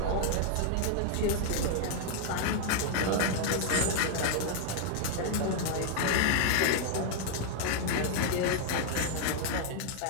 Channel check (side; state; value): both; different; correlation 0.00